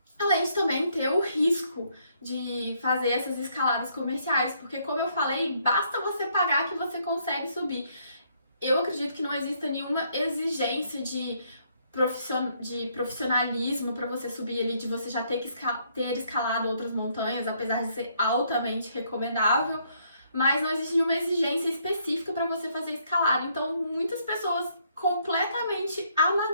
além de também ter o risco de fazer essas escaladas comerciais, porque como eu falei, basta você pagar que você consegue subir. Eu acredito que não exista nenhuma exigência de profissionalismo para você subir ali, de você já ter escalado outras montanhas, apesar de ser altamente recomendável, mas não existe nenhuma exigência específica para você fazer escalada. Então, muitas pessoas completamente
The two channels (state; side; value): inverted; both; correlation -0.70